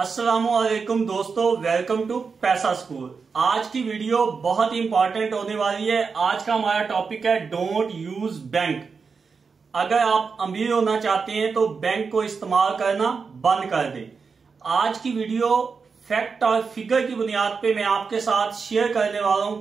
दोस्तों, welcome to पैसा स्कूल। आज की वीडियो बहुत ही इंपॉर्टेंट होने वाली है। आज का हमारा टॉपिक है डोंट यूज बैंक। अगर आप अमीर होना चाहते हैं तो बैंक को इस्तेमाल करना बंद कर दें। आज की वीडियो फैक्ट और फिगर की बुनियाद पे मैं आपके साथ शेयर करने वाला हूं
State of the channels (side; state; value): left; quieter; 5.2 dB